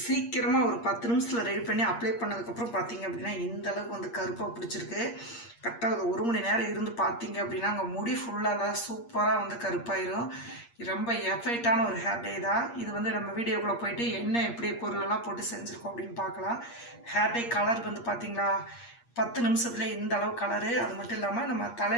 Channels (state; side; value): late; right; 8.5 ms